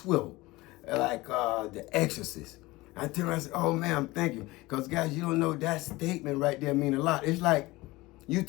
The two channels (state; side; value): quieter; right; 20.6 dB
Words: like The Exorcist. I tell her, I said, oh, ma'am, thank you. Because, guys, you don't know, that statement right there mean a lot. It's like you